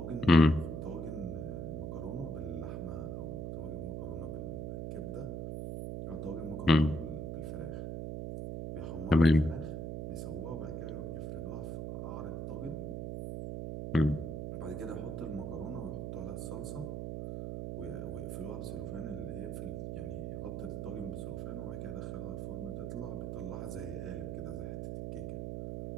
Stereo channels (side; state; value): right; noise; hum, 3 dB below the sound